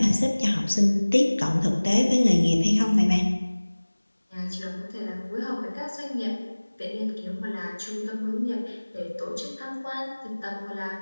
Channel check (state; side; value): inverted; both; correlation -1.00